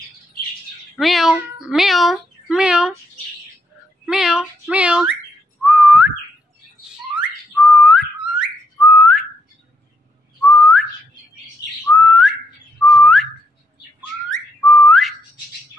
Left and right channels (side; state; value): both; normal; correlation 0.77